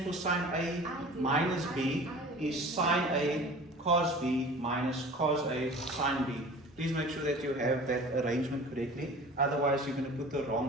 for sine A minus B is sine A cos B minus cos A sin B. Please make sure that you have that arrangement correctly, otherwise you're going to put the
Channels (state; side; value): normal; both; correlation 0.42